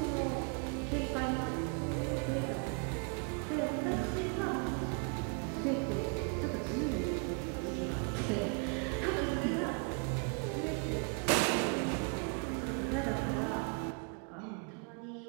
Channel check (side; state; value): left; quieter; 38.5 dB